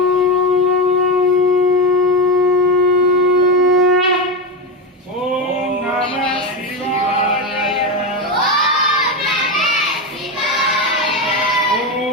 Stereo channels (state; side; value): normal; both; correlation 0.15